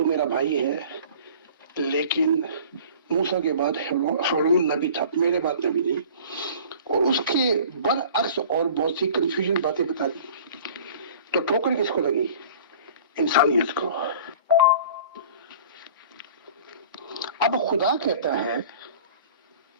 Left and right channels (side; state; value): both; inverted; correlation -0.45